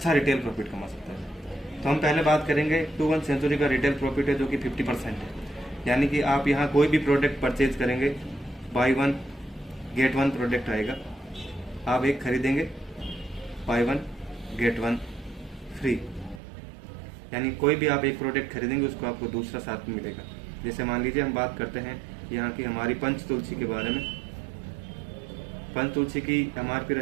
रिटेल प्रॉफिट कमा सकता है। तो हम पहले बात करेंगे 21 सेंचुरी का रिटेल प्रॉफिट है, जो कि 50% है। यानी कि आप यहाँ कोई भी प्रोडक्ट परचेज करेंगे, बाई 1 गेट 1 प्रोडक्ट आएगा। आप एक खरीदेंगे, बाई 1 गेट 1 फ्री। यानी कोई भी आप एक प्रोडक्ट खरीदेंगे उसको आपको दूसरा साथ में मिलेगा। जैसे मान लीजिए हम बात करते हैं यहाँ की हमारी पंच तुलसी के बारे में। पंच तुलसी की एमआरपी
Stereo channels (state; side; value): drops out; left; at 16.4 s